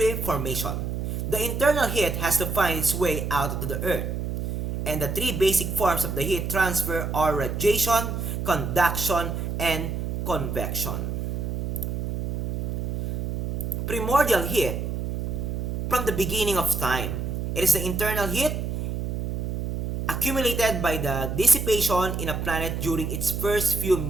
formation. The internal heat has to find its way out to the Earth. And the three basic forms of the heat transfer are radiation, conduction, and convection. Primordial heat, from the beginning of time, it is the internal heat accumulated by the dissipation in a planet during its first few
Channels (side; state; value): right; noise; hum, 2 dB below the sound